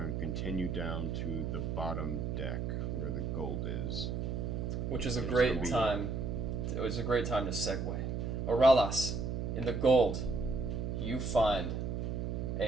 to continue down to the bottom deck where the gold is. Which is a There's great gonna be- time. It was a great time to segue. Oralas, in the gold, you find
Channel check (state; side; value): noise; right; hum, 2 dB below the sound